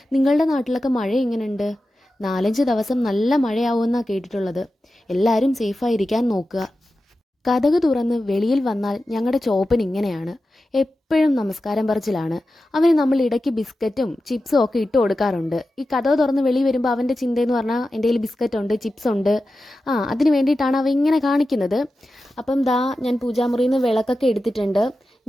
നിങ്ങളുടെ നാട്ടിലൊക്കെ മഴ എങ്ങനെയുണ്ട്? 4-5 ദിവസം നല്ല മഴയാവുമെന്നാണ് കേട്ടിട്ടുള്ളത്. എല്ലാവരും സേഫായിരിക്കാൻ നോക്കുക. കതക് തുറന്ന് വെളിയിൽ വന്നാൽ ഞങ്ങളുടെ ചോപ്പൻ ഇങ്ങനെയാണ്. എപ്പോഴും നമസ്കാരം പറച്ചിലാണ്. അവന് നമ്മൾ ഇടയ്ക്ക് ബിസ്ക്കറ്റും ചിപ്സും ഒക്കെ ഇട്ട് കൊടുക്കാറുണ്ട്. ഈ കതക് തുറന്ന് വെളി വരുമ്പോൾ അവൻ്റെ ചിന്തയെന്ന് പറഞ്ഞാൽ എൻ്റെ കയ്യിൽ ബിസ്ക്കറ്റ് ഉണ്ട്, ചിപ്സ് ഉണ്ട്, അതിന് വേണ്ടിയിട്ടാണ് അവ ഇങ്ങനെ കാണിക്കുന്നത്. അപ്പം ദാ ഞാൻ പൂജാമുറിയിൽ നിന്ന് വിളക്കൊക്കെ എടുത്തിട്ടുണ്ട്.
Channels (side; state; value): both; normal; correlation 0.93